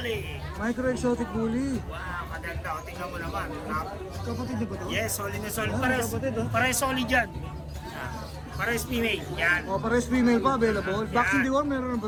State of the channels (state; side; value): identical; both; correlation 1.00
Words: Micro exotic bully. Wow, maganda. O, tingnan mo naman. Kapatid niyo ba to? Yes, solid na solid. Ah, Pares, kapatid, oh. pares solid yan. Pares female. Yan. O, pares female pa available. Yan. Vaccine deworm, meron na